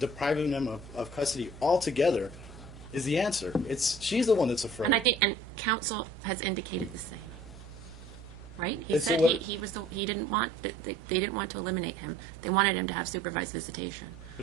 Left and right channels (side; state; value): right; noise; hum, 16 dB below the sound